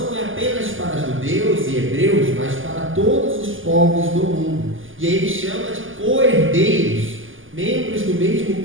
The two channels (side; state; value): left; late; 0.58 ms